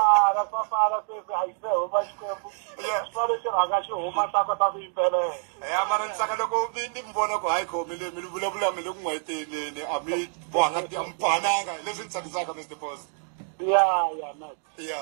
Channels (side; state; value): left; silent; 56 dB below the other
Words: Safara sweswi a yi se huma xikwembu. Swari xi rhanga xi huma ta kota ku yimbelela. Ya mara ntsaka loko ni mbona ku hayi khomile mi vulavula mi le ku n'wayiteleni a mi bohanga ti ampananga leswi ntsakisaka Mr Boss. Yeah, man.